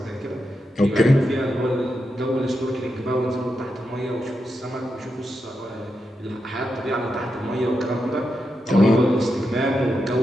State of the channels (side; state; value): both; normal; correlation 0.86